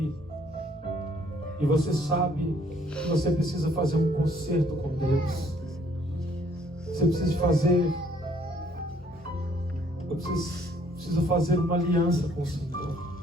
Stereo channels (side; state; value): both; normal; correlation 0.63